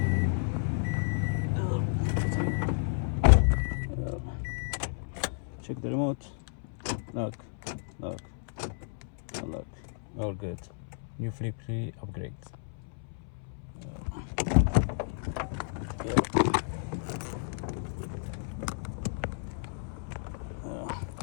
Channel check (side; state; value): right; silent; 57 dB below the other